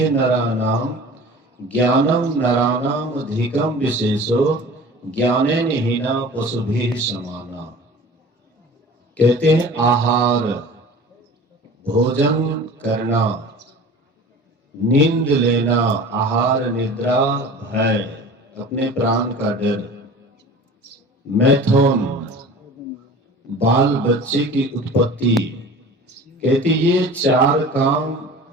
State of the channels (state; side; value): normal; both; correlation 0.41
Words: नराणाम ज्ञानम नराणाम अधिकम विशेषो ज्ञानेन हीना पशुभिः समाना। कहते हैं आहार, भोजन करना, नींद लेना, आहार निद्रा भय, अपने प्राण का डर, मैथुन बाल बच्चे की उत्पत्ति। कहते ये चार काम